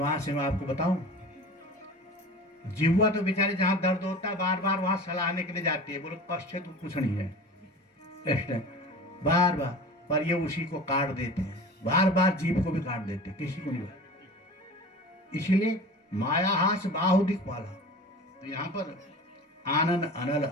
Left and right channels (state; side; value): normal; both; correlation 0.37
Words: है, मैं आपको बताऊं। जिह्वा तो बेचारे जहां दर्द होता है बार बार वहां सलाहने के लिए जाती है। बोलो कष्ट तो कुछ नहीं है, बार बार, पर ये उसी को काट देते हैं, बार बार जीव को भी काट देते हैं, किसी को नहीं काटते। इसलिए माया हास बाहु दिखपाला। तो यहाँ पर आनन अनल